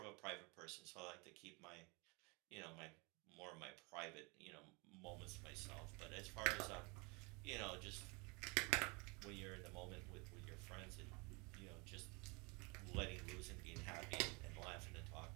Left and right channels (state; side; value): quieter; left; 29.2 dB